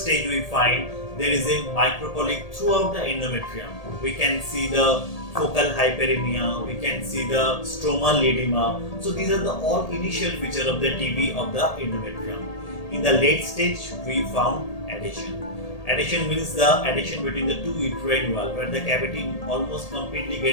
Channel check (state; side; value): late; right; 1.8 ms